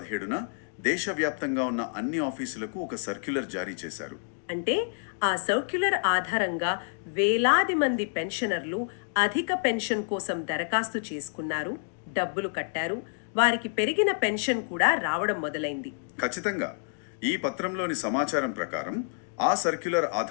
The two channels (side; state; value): right; silent; digital silence